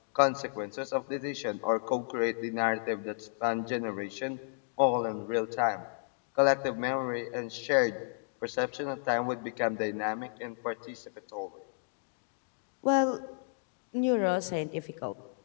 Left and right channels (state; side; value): silent; right; digital silence